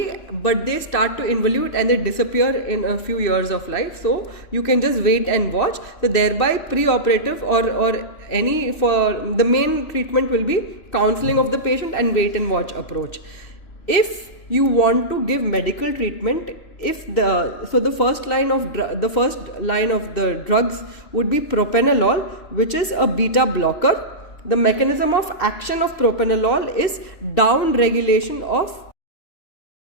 but they start to involute and they disappear in a few years of life. So you can just wait and watch. So thereby pre-operative or any, for the main treatment will be counseling of the patient and wait and watch approach. If you want to give medical treatment, the first line of the drugs would be propranolol, which is a beta blocker. The mechanism of action of propranolol is down regulation of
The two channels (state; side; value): late; right; 2.7 ms